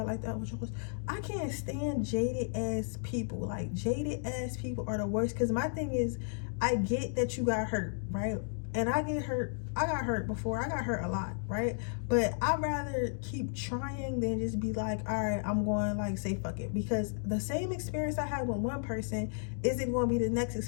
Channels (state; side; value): silent; right; digital silence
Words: like that with yours? I can't stand jaded ass people. Like, jaded ass people are the worst. Because my thing is, I get that you got hurt, right? And I get hurt. I got hurt before. I got hurt a lot, right? But I'd rather keep trying than just be like, all right, I'm going, like, say fuck it. Because the same experience I had with one person isn't going to be the next